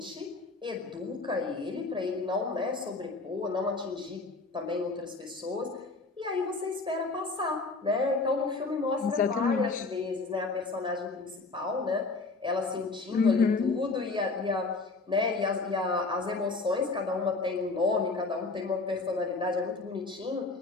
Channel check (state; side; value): quieter; right; 3.7 dB